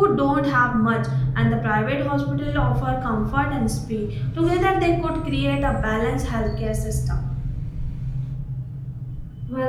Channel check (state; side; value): identical; both; correlation 1.00